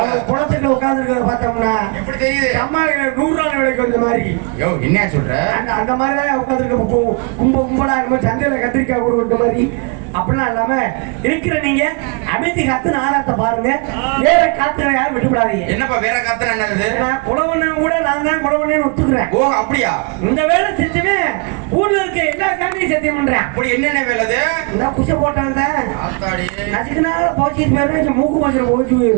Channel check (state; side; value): quieter; left; 33.3 dB